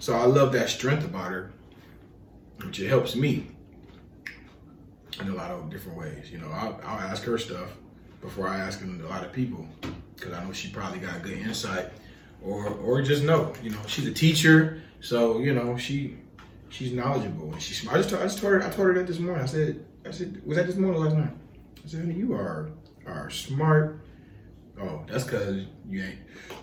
I love that strength about her, which it helps me in a lot of different ways. You know, I'll ask her stuff before I ask a lot of people, because I know she probably got good insight, or just know, you know, she's a teacher, so you know she's knowledgeable and she's smart. I told her that this morning. I said, was that this morning or last night? I said, honey, you are smart. Oh, that's because you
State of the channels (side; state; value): both; identical; correlation 1.00